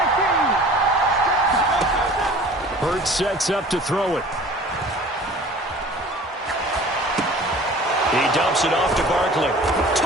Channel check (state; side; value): normal; both; correlation 0.45